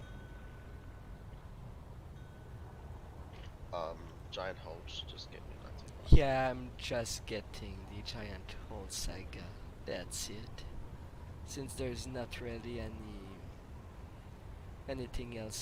Giant holes, just get me 19. Yeah, I'm just getting the giant hole saga. That's it. Since there's not really anything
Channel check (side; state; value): both; identical; correlation 1.00